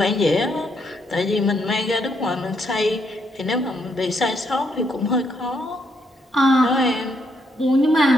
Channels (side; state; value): both; normal; correlation 0.75